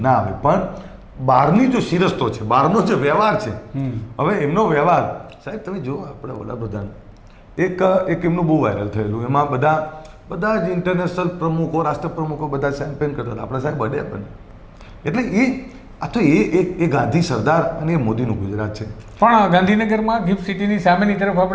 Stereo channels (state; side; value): identical; both; correlation 1.00